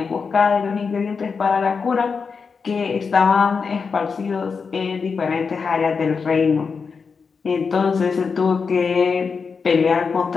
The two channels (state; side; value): quieter; right; 5.3 dB